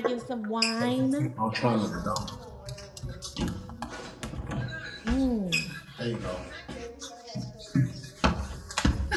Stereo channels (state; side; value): identical; both; correlation 1.00